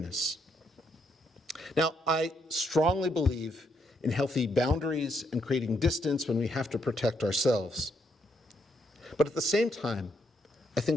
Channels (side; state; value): both; normal; correlation 0.75